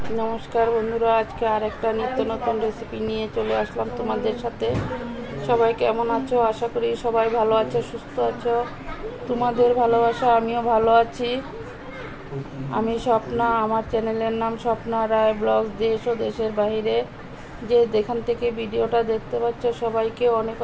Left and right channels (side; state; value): both; identical; correlation 1.00